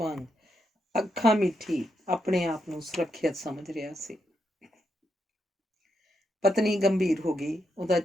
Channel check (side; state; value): both; normal; correlation 0.81